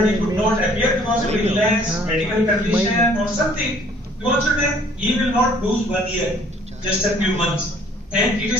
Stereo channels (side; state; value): both; normal; correlation 0.58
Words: could not appear because of illness, medical condition, or something, then he will not lose 1 year, just a few months. And it